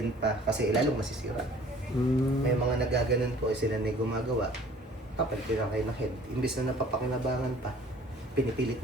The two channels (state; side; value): normal; both; correlation 0.52